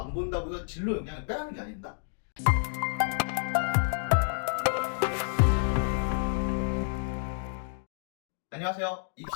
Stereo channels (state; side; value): silent; right; digital silence